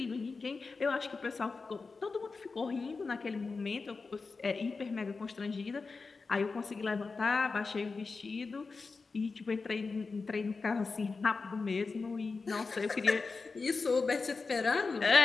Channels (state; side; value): quieter; right; 4.3 dB